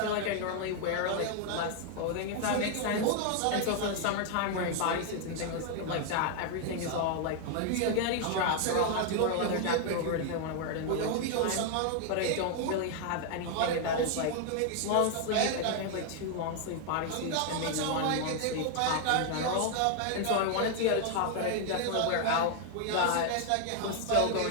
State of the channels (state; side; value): different; both; correlation 0.00